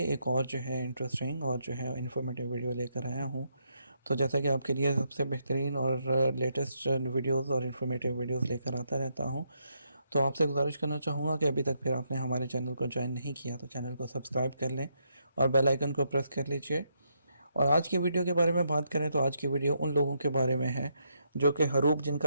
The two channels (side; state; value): both; inverted; correlation -0.78